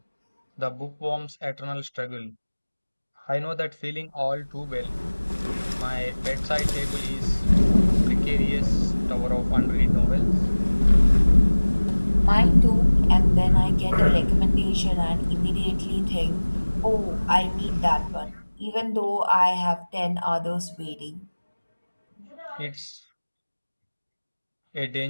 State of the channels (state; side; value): inverted; both; correlation -1.00